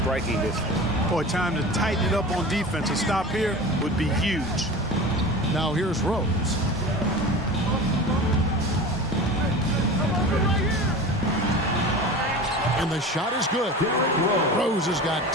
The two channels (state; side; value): normal; both; correlation 0.34